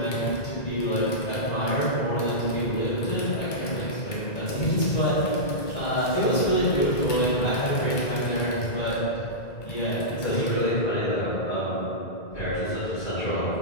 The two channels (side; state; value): right; late; 2.0 ms